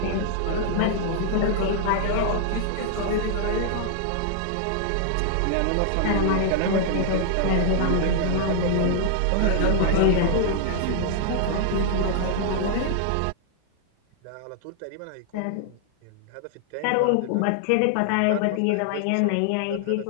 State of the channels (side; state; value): both; different; correlation -0.01